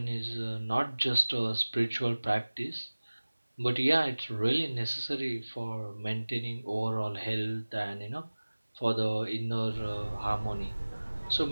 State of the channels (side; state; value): both; inverted; correlation -1.00